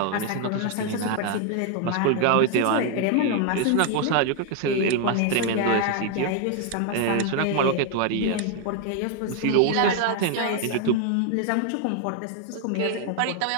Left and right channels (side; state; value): both; different; correlation 0.01